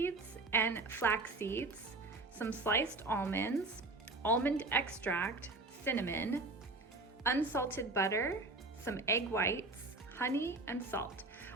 and flax seeds, some sliced almonds, almond extract, cinnamon, unsalted butter, some egg whites, honey, and salt.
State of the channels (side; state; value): left; quieter; 3.2 dB